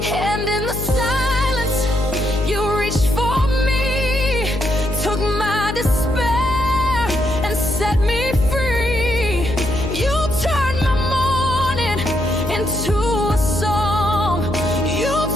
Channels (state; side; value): noise; left; hum, 6 dB below the sound